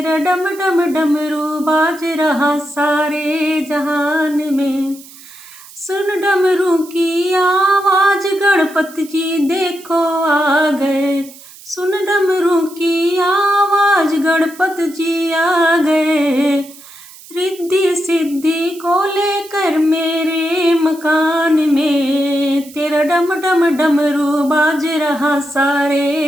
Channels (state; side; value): noise; right; hiss, 20 dB below the sound